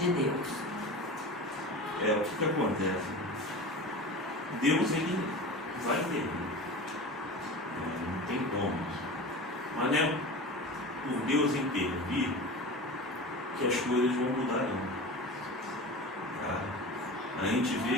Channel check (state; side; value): normal; both; correlation 0.32